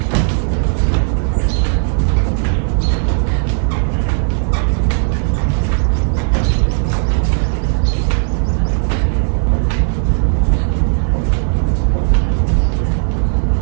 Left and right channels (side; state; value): left; silent; 58 dB below the other